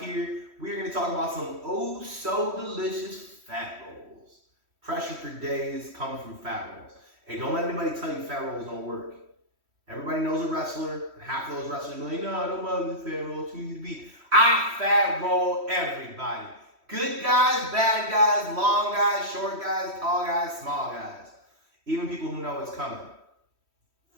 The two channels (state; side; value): late; left; 3.1 ms